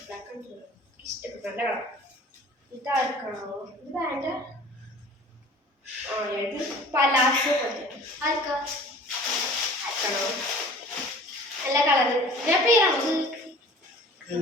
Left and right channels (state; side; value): normal; both; correlation 0.45